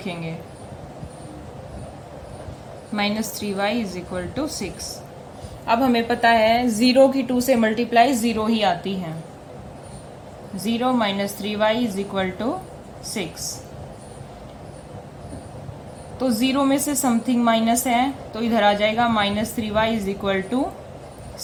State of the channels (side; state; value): both; identical; correlation 1.00